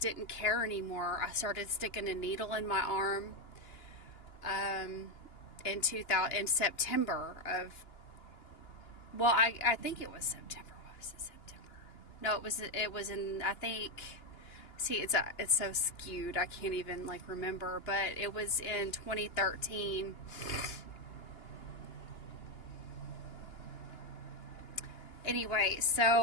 care anymore. I started sticking a needle in my arm in September of, well, I think it was September. What was it, September? No, it was in, I think, see, it's so skewed, I can't even remember, but it was in 2013. Anyway,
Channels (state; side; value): late; right; 2.9 ms